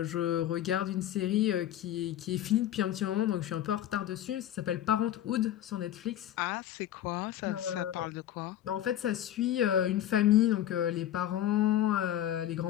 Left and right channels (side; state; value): right; quieter; 12.0 dB